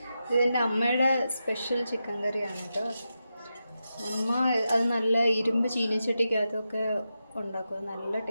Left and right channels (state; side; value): inverted; both; correlation -0.89